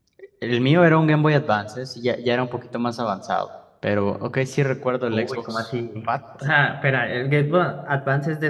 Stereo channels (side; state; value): both; identical; correlation 1.00